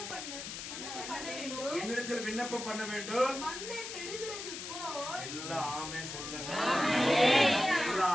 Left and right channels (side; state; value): left; noise; hiss, 8 dB below the sound